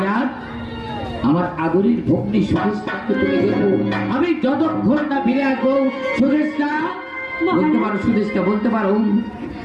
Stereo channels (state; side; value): identical; both; correlation 1.00